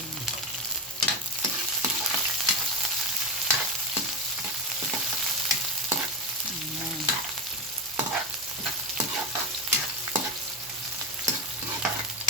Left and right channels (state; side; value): normal; both; correlation 0.15